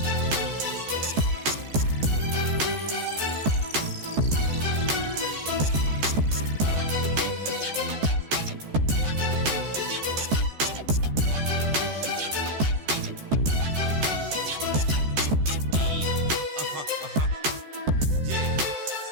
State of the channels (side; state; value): left; late; 14 ms